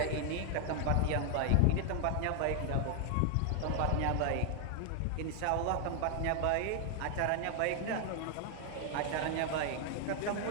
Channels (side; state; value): both; different; correlation 0.00